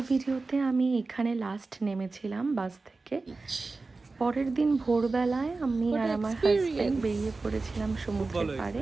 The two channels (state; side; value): quieter; left; 3.7 dB